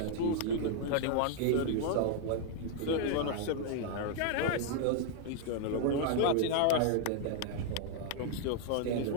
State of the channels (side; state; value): both; different; correlation 0.00